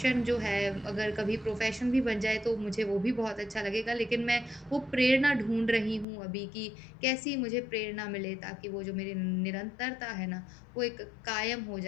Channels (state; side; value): drops out; right; at 6.1 s